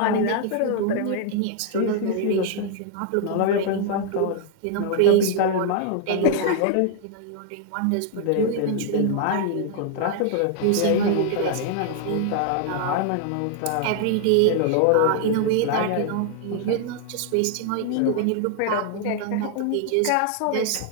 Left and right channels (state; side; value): different; both; correlation 0.00